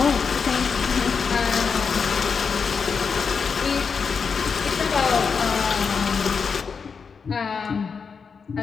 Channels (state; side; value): quieter; right; 5.7 dB